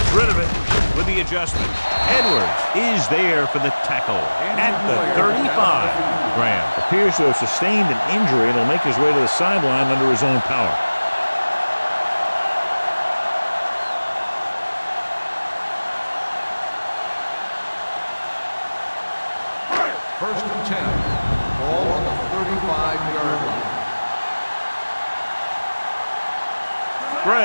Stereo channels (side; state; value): both; inverted; correlation -1.00